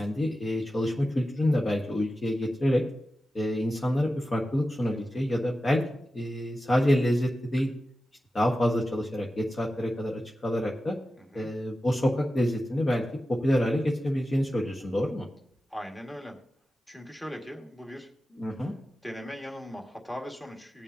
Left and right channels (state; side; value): normal; both; correlation 0.93